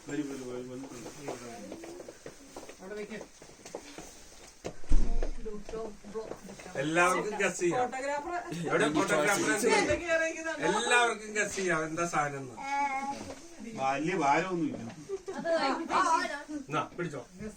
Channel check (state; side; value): identical; both; correlation 1.00